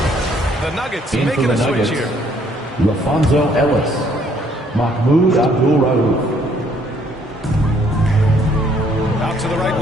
The Nuggets In making for a the switch Nuggets, here. Lafonso Ellis, Mahmoud Abdul-Rauf. Out to the right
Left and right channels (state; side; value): normal; both; correlation 0.64